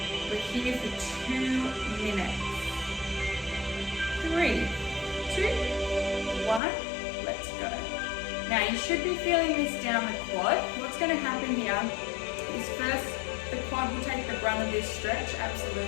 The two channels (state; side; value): drops out; right; at 6.6 s